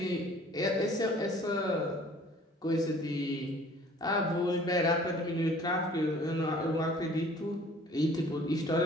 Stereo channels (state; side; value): normal; both; correlation 0.52